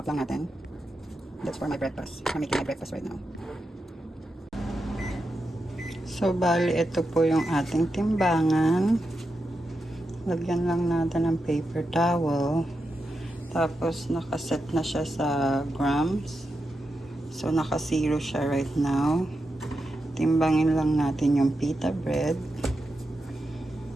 lang natin. That's for my breakfast. I'm making my breakfast right now. So, bali, ito po yung ating timbangan. Lagyan lang natin ng paper towel. Tapos, nakaset na siya sa grams. So, naka-zero siya right now. Timbangin lang natin yung pita bread.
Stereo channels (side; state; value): both; normal; correlation 0.88